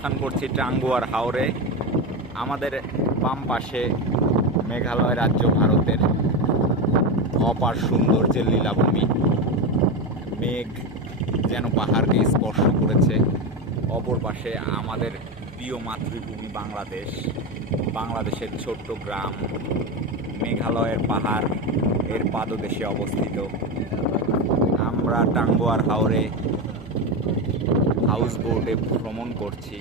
করছি টাঙ্গুয়ার হাওরে। আমাদের বাম পাশে মেঘালয় রাজ্য, ভারতের অপার সৌন্দর্যের লীলাভূমি। মেঘ যেন পাহাড়কে স্পর্শ করেছে। অপর পাশে আমাদের প্রিয় মাতৃভূমি বাংলাদেশ, বাংলাদেশের ছোট্ট গ্রাম মেঘালয়ের পাহাড় এর পাদদেশে অবস্থিত। আমরা টাঙ্গুয়ার হাওরে হাউস বোটে ভ্রমণ করছি।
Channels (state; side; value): normal; both; correlation 0.16